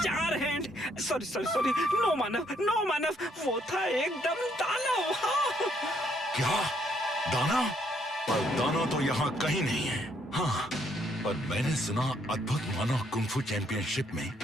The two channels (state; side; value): normal; both; correlation 0.70